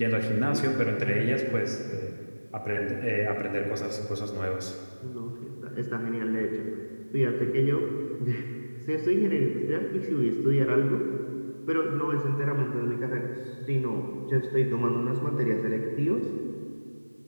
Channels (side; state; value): both; inverted; correlation -1.00